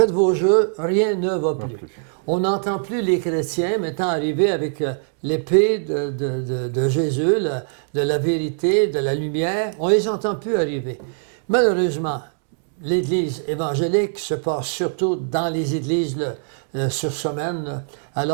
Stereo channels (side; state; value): left; silent; 64 dB below the other